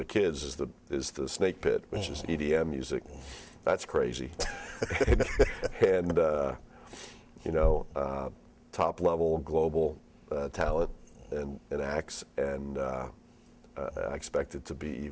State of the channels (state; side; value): identical; both; correlation 1.00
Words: kids is the Snake Pit, which is EDM music. That's crazy, and you know, top level global talent and acts, and I expect it to be